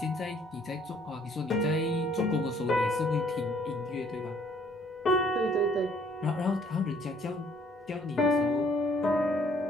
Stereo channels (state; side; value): normal; both; correlation 0.61